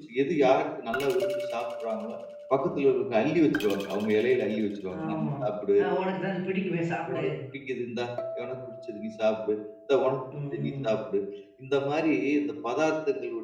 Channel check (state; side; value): identical; both; correlation 1.00